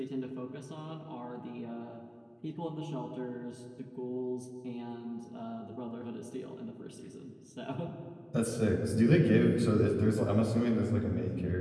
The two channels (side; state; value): both; identical; correlation 1.00